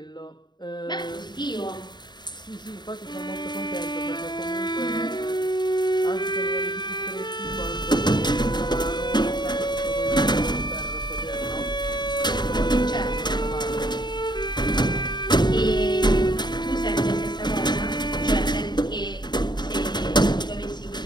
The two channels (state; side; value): late; right; 0.21 ms